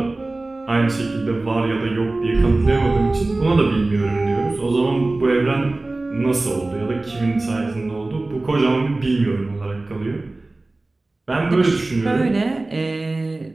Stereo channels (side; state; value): left; quieter; 3.0 dB